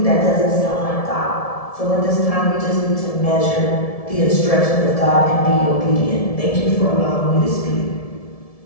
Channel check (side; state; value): right; late; 1.7 ms